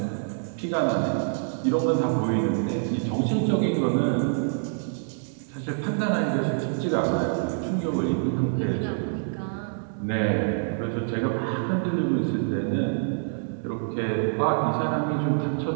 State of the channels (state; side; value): silent; left; digital silence